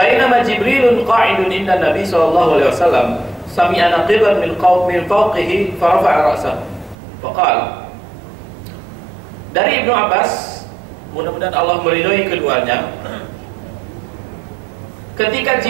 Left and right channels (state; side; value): drops out; left; at 7.0 s